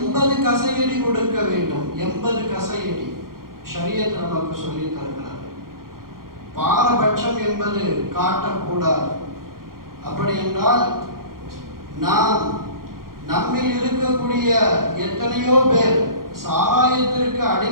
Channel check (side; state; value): left; late; 0.92 ms